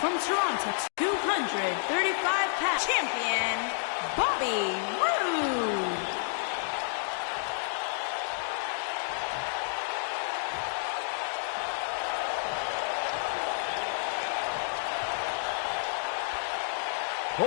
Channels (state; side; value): silent; right; digital silence